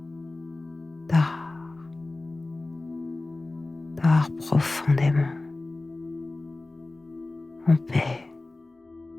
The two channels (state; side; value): quieter; right; 3.0 dB